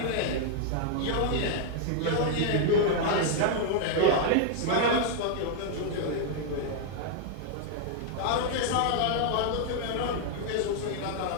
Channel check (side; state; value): both; different; correlation 0.00